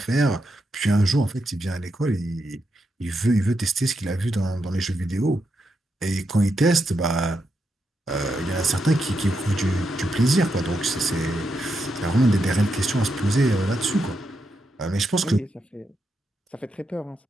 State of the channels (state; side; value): normal; both; correlation 0.83